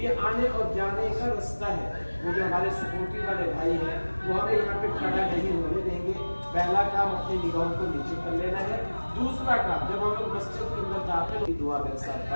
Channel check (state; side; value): inverted; both; correlation -1.00